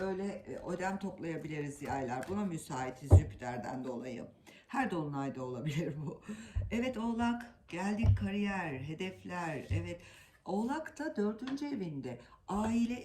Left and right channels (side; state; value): both; identical; correlation 1.00